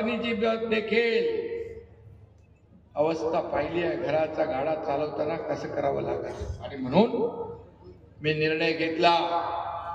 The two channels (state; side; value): identical; both; correlation 1.00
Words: देखील अवस्था पाहिली आहे. घराचा गाडा चालवताना कसं करावं लागत. आणि म्हणून मी निर्णय घेतला,